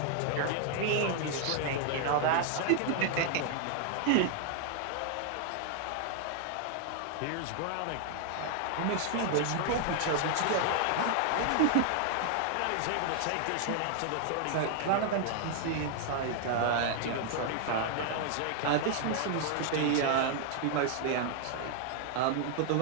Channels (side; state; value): both; different; correlation 0.00